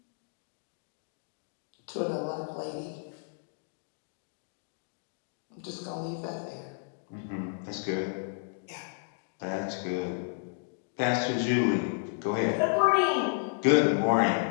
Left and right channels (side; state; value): right; silent; digital silence